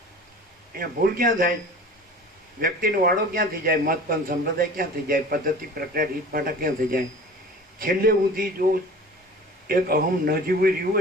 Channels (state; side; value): normal; both; correlation 0.41